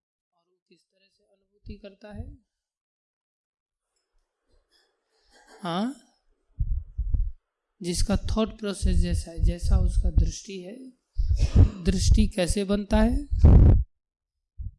वो किस तरह से अनुभूति करता है? हाँ, जिसका थॉट प्रोसेस जैसा है, जैसा उसका दृष्टि है। दृष्टि कैसे बनता है?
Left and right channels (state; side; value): identical; both; correlation 1.00